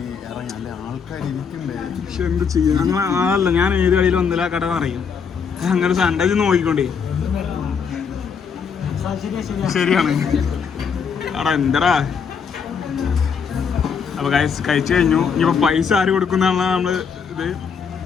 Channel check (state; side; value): quieter; right; 6.3 dB